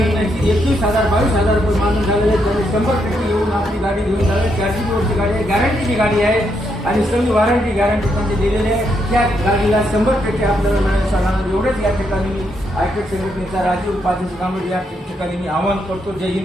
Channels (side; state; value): both; normal; correlation 0.78